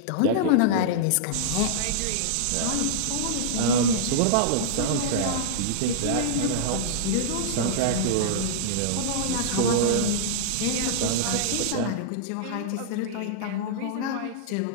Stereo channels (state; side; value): different; both; correlation -0.02